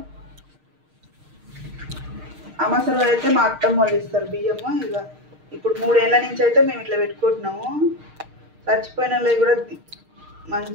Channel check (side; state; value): left; late; 6.5 ms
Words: అమాస రోజు అయితే మా అత్తమ్మ వాళ్ళు ఇస్తారు బియ్యము. ఇక ఇప్పుడు 3 ఏళ్ళ నుంచి అయితే మేము ఇట్లా పెట్టుకుంటున్నాము. చచ్చిపోయిన వాళ్ళకి కూడా